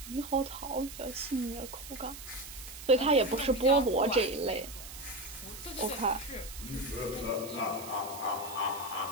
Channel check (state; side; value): noise; right; hiss, 13 dB below the sound